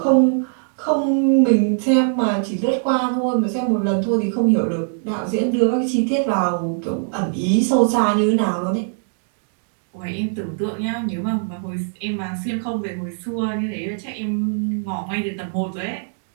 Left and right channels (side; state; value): left; silent; digital silence